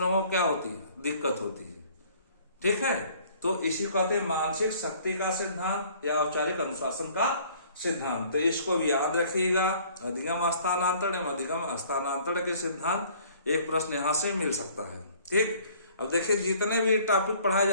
को क्या होती है? दिक्कत होती है। ठीक है, तो इसी कहते हैं मानसिक शक्ति का सिद्धांत या औपचारिक अनुशासन का सिद्धांत। तो इसको भी याद रखिएगा। अधिगम स्थानांतरण, अधिगम स्थानांतरण के सिद्धांत एक प्रश्न यहां से मिल सकता है। ठीक, अब देखिए, जितने भी टॉपिक पढ़ाए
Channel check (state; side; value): inverted; both; correlation -0.55